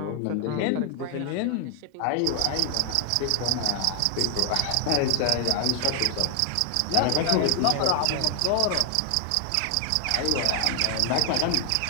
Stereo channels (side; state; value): both; different; correlation 0.00